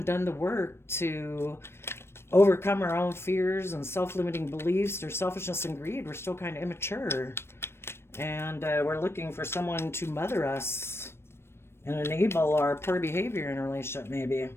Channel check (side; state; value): right; late; 0.12 ms